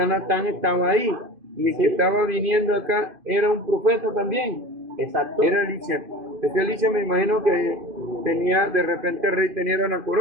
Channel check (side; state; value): left; late; 2.5 ms